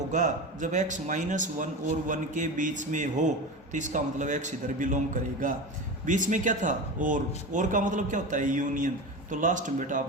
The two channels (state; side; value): normal; both; correlation 0.26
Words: जब x माइनस 1 और 1 के बीच में हो, तो इसका मतलब x इधर बिलोंग करेगा। बीच में क्या था, और का मतलब क्या होता है, यूनियन, तो लास्ट में बेटा